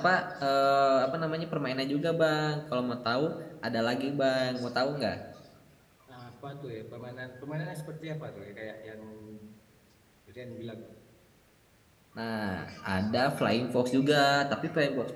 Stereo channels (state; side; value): identical; both; correlation 1.00